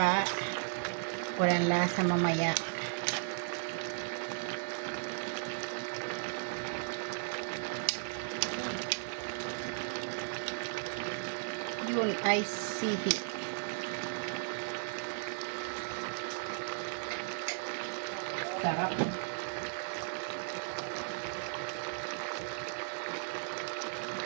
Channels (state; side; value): silent; left; 54 dB below the other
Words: walang lasa mamaya. Yun ay sihi. Sarap.